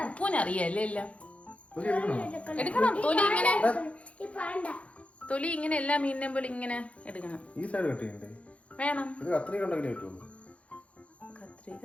ഉപ്പൂനറിയല്ലേ എല്ലാം എടുക്കണം. തൊലി ഇങ്ങനെ എല്ലാ മീനിനെ പോലെ ഇങ്ങനെ എടുക്കണം. വേണം കത്രിക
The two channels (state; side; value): late; right; 0.063 ms